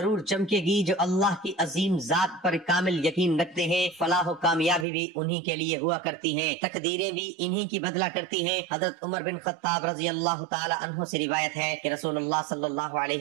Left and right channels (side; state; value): left; drops out; at 4.9 s